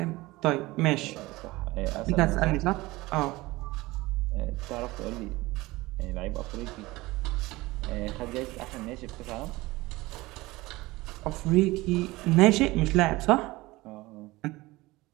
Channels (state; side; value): quieter; left; 20.2 dB